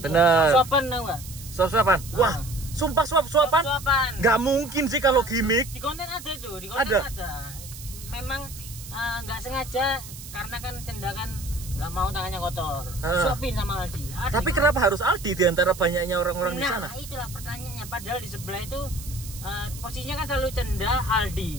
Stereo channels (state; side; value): noise; right; hiss, 14 dB below the sound